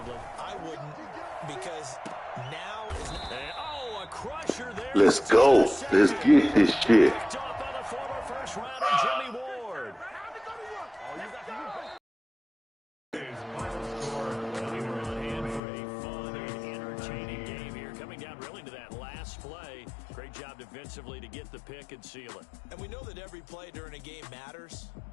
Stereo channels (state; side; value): drops out; right; at 15.6 s